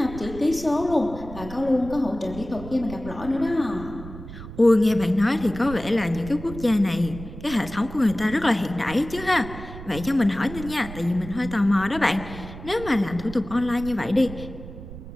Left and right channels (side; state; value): right; noise; rumble, 13 dB below the sound